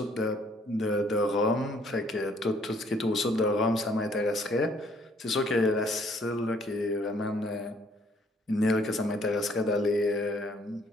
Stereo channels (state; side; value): normal; both; correlation 0.63